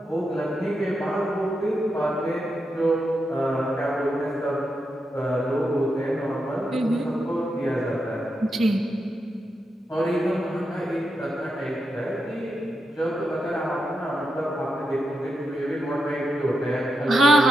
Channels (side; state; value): both; normal; correlation 0.85